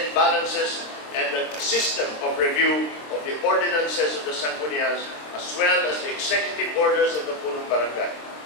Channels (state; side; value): late; right; 26 ms